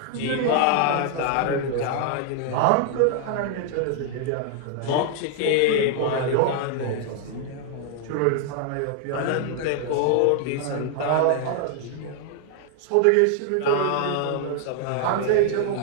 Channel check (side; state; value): both; different; correlation 0.00